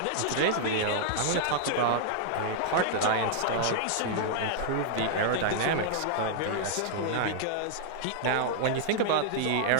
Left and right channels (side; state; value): both; different; correlation -0.01